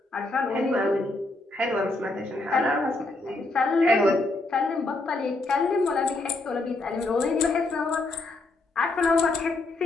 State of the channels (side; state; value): right; quieter; 3.0 dB